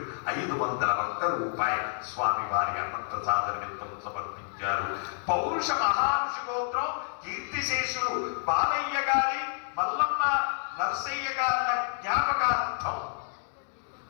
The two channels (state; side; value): silent; right; digital silence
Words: 501 రూపాయలు స్వామివారి అన్నప్రసాద నిమిత్తం సమర్పించారు. పౌరుష మహారుషి గోత్రం కీర్తిశేషులు బాలయ్య గారి మల్లమ్మ నరసయ్య గారి జ్ఞాపకార్థం